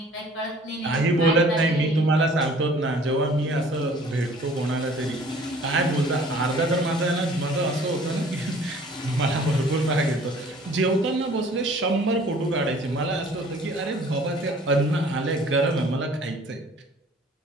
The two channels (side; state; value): both; normal; correlation 0.52